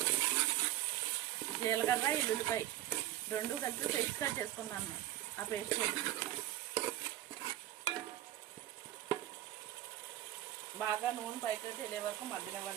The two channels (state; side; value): quieter; left; 14.1 dB